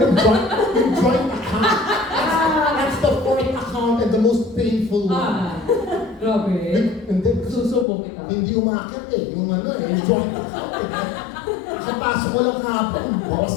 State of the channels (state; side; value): drops out; right; at 7.9 s